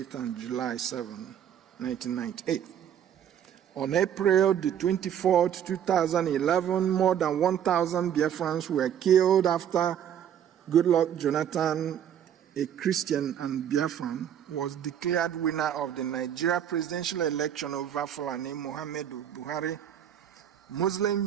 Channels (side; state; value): left; quieter; 9.5 dB